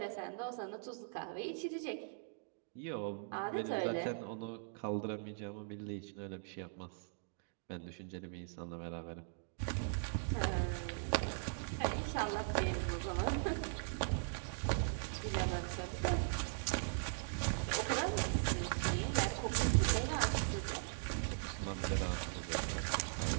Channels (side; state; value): left; silent; digital silence